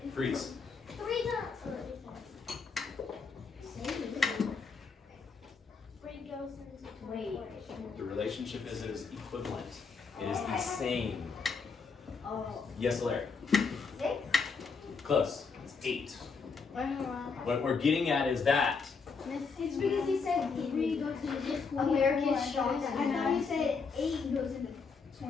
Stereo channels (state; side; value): quieter; right; 5.0 dB